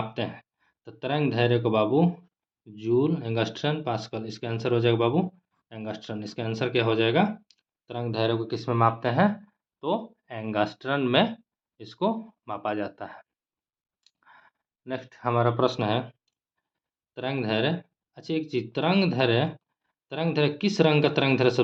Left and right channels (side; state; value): both; identical; correlation 1.00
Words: हैं? तो तरंग धैर्य को बाबू जूल, एंगस्ट्रम, पास्कल। इसका आंसर हो जाएगा बाबू एंगस्ट्रम। इसका आंसर क्या हो जाएगा? तरंग धैर्य को किस में मापते हैं? तो एंगस्ट्रम में इसको मापा जाता है। नेक्स्ट हमारा प्रश्न है तरंग धैर्य। अच्छा एक चीज, तरंग धैर्य किस रंग का तरंग धैर्य